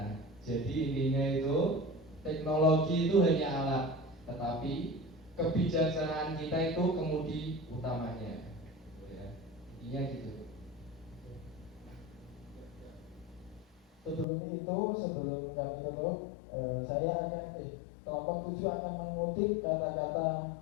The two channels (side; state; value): right; drops out; at 14.2 s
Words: jadi intinya itu teknologi itu hanya alat, tetapi kebijaksanaan kita itu kemudi utamanya. Ya, intinya gitu. Sebelum kami tutup, saya akan kelompok 7 akan mengutip kata-kata